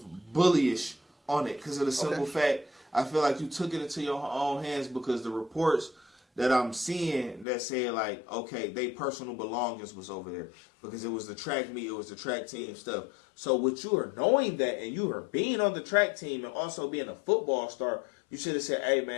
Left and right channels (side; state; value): right; drops out; at 7.5 s